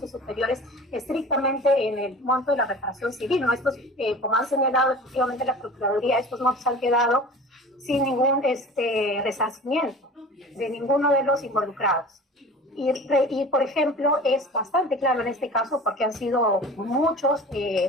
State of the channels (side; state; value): both; normal; correlation 0.39